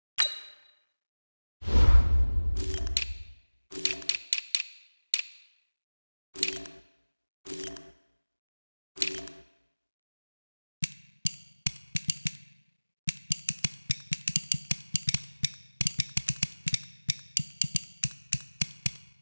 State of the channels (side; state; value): both; inverted; correlation -1.00